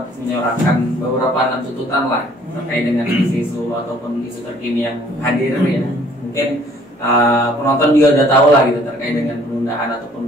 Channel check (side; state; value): both; normal; correlation 0.58